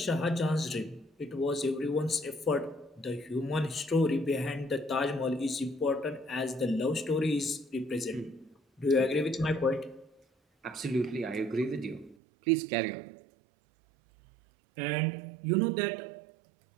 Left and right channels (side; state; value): left; drops out; at 12.2 s